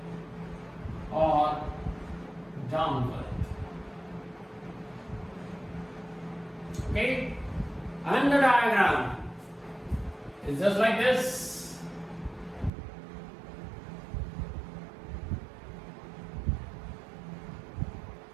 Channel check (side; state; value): left; drops out; at 12.7 s